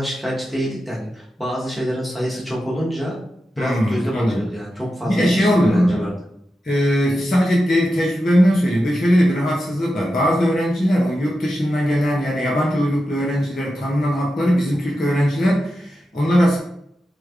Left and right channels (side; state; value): both; normal; correlation 0.90